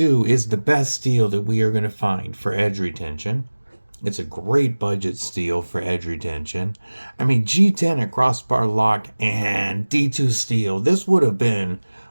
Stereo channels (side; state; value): both; inverted; correlation -1.00